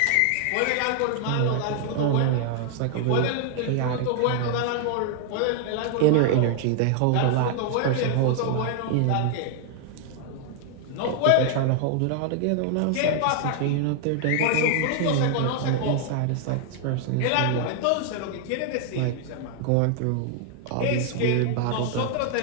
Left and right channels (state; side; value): different; both; correlation 0.00